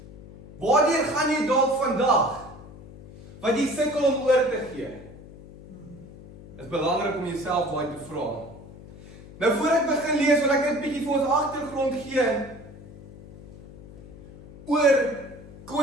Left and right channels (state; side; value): noise; left; hum, 18 dB below the sound